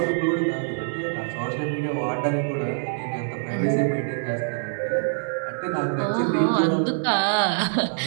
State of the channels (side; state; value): left; silent; digital silence